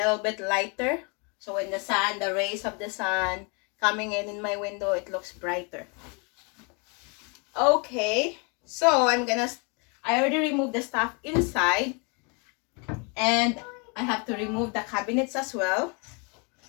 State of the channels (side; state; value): right; quieter; 33.6 dB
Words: bit lighter. So when the rays of the sun coming in my window, it looks brighter. Okay, so I already removed the stuff inside, and I have to remove the cabinets as well,